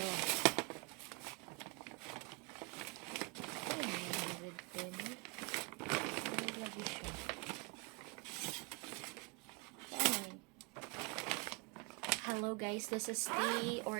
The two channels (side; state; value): left; quieter; 27.9 dB